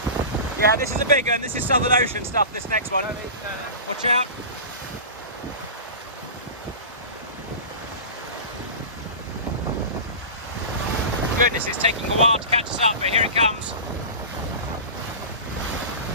Yeah, this is a big one. This is Southern Ocean stuff, this next one. Watch out. Goodness, it's taking a while to catch us up, but here it comes.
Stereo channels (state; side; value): inverted; both; correlation -0.31